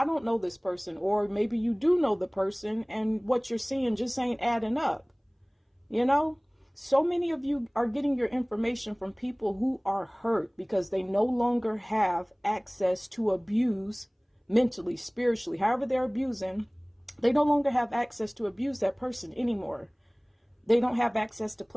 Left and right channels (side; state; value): both; identical; correlation 1.00